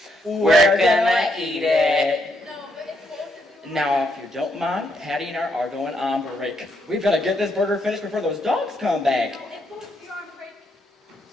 We're gonna eat it. No, but if both of you... Now, if you don't mind, Patty and I are going on break. We've got to get this burger finished before those dogs come back. No, if both of you are on break,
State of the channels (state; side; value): normal; both; correlation 0.76